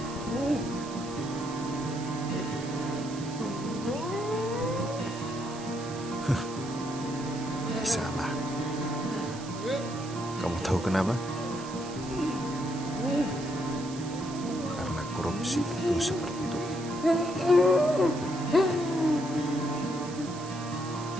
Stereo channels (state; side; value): noise; right; hiss, 15 dB below the sound